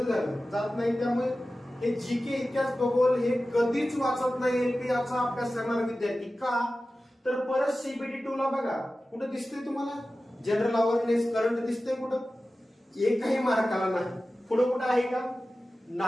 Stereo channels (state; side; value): normal; both; correlation 0.95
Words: झालं, जात नाही. त्यामुळे हे जीके, इतिहास, भूगोल हे कधीच वाचत नाही एलपी याचा अभ्यास करणारा विद्यार्थी. का? तर परत सीबीटी 2 ला बघा कुठं दिसतंय तुम्हाला जनरल अवेअरनेस, करंट दिसतंय कुठं? एकही मार्काला नाही. पुढे कुठं आहे का?